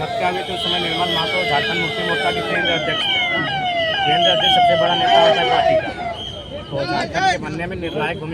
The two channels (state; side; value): identical; both; correlation 1.00